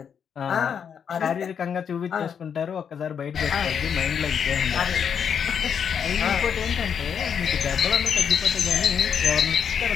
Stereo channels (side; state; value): right; quieter; 7.5 dB